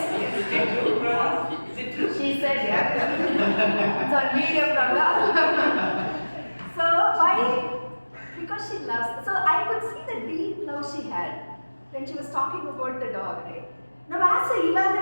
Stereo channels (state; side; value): inverted; both; correlation -1.00